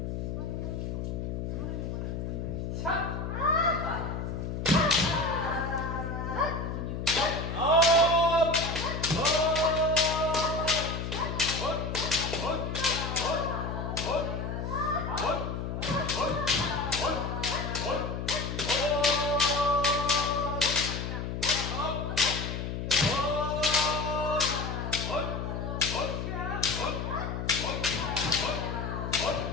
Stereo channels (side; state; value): left; noise; hum, 4 dB below the sound